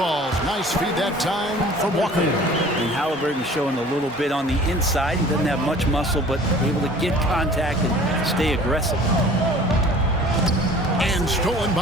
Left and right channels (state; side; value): normal; both; correlation 0.47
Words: Nice feed that time from Walker. And Halliburton showing a little bit on the inside. He doesn't have much muscle, but able to get contact and stay aggressive. And stolen